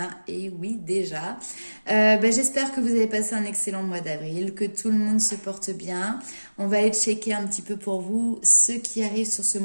Et oui, déjà. J'espère que vous avez passé un excellent mois d'avril, que tout le monde se porte bien. On va aller checker un petit peu pour vous ce qui arrive sur ce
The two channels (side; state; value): both; inverted; correlation -1.00